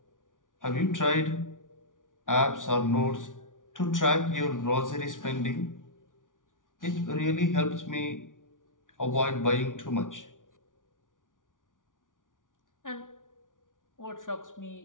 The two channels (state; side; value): late; right; 0.88 ms